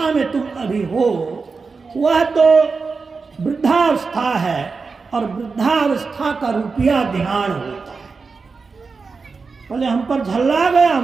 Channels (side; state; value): left; quieter; 4.6 dB